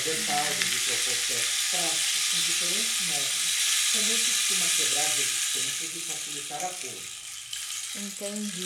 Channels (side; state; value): both; identical; correlation 1.00